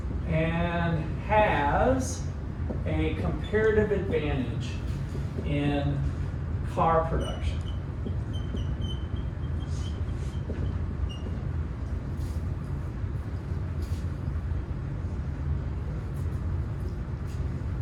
and has a comparative advantage in car production.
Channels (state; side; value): identical; both; correlation 1.00